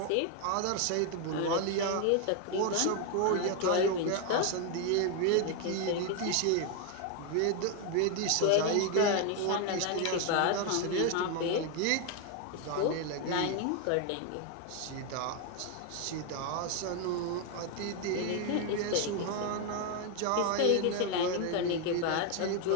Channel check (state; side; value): different; both; correlation 0.01